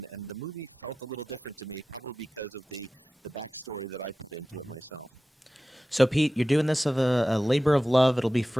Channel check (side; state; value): both; normal; correlation 0.94